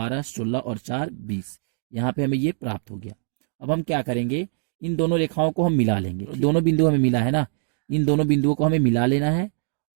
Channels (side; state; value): left; silent; digital silence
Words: 16 और 4, 20, यहाँ पे हमें ये प्राप्त हो गया। अब हम क्या करेंगे, इन दोनों रेखाओं को हम मिला लेंगे, दोनों बिंदु हमें मिला है ना, इन दोनों बिंदुओं को हमें मिला लेना है